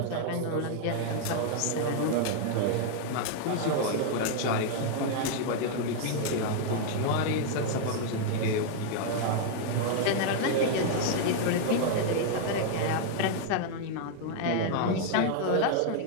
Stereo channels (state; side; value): different; both; correlation 0.00